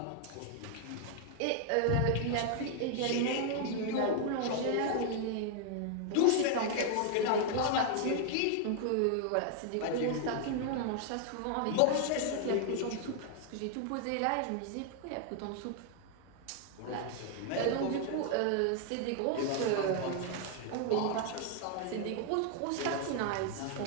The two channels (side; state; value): both; different; correlation 0.00